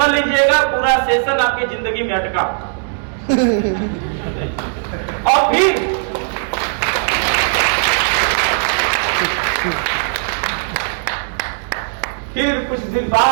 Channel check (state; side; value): silent; left; 65 dB below the other